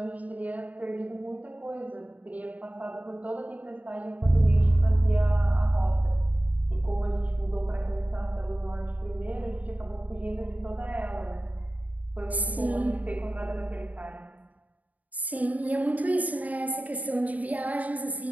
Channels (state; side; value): late; left; 0.074 ms